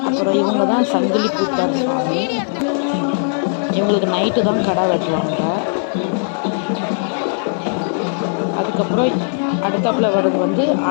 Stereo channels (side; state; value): right; silent; digital silence